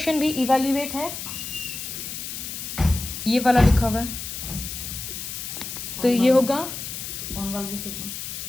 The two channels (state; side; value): noise; left; hiss, 7 dB below the sound